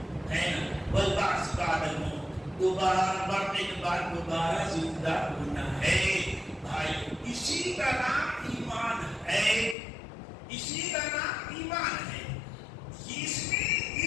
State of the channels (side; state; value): right; drops out; at 9.8 s